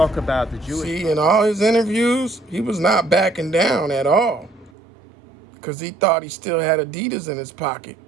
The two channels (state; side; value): drops out; left; at 4.7 s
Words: about the Jewish. See, in all his interviews, he was not backing down at all, because he thought he still had Adidas in his pocket.